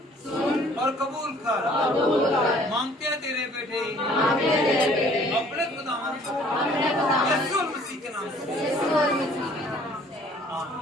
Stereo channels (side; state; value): both; normal; correlation 0.56